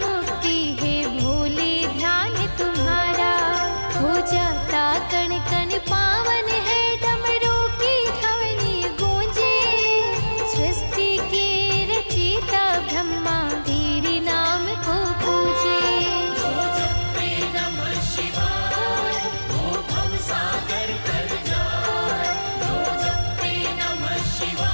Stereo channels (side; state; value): both; inverted; correlation -1.00